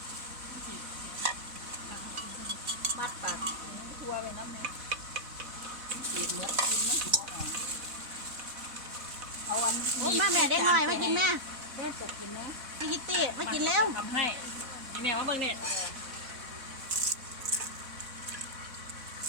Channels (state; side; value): late; left; 4.1 ms